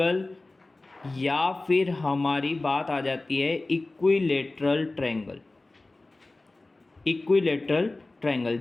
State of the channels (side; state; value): right; quieter; 3.1 dB